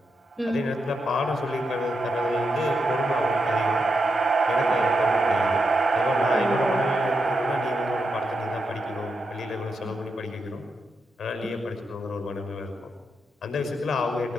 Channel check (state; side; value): normal; both; correlation 0.84